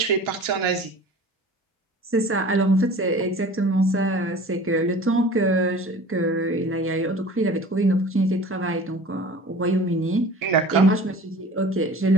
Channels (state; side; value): normal; both; correlation 0.42